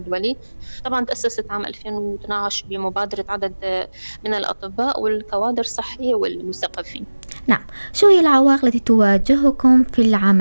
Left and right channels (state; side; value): inverted; both; correlation -1.00